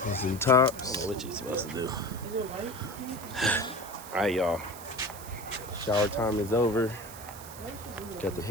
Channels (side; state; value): right; noise; hiss, 15 dB below the sound